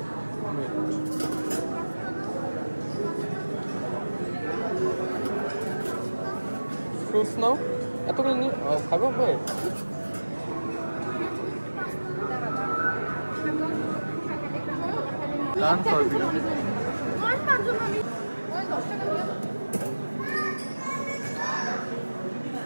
ফ্রুটস নাও, এতগুলো নিয়ে খাবো। ওয়েট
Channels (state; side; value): inverted; both; correlation -1.00